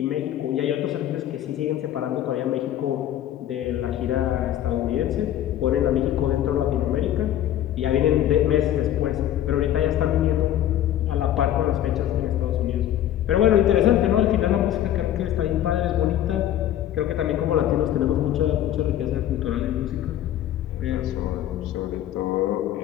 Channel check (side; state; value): right; quieter; 11.8 dB